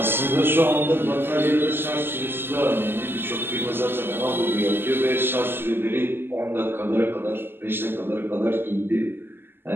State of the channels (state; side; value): late; left; 0.10 ms